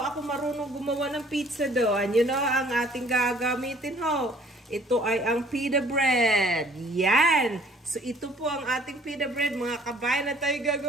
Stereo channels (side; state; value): both; normal; correlation 0.57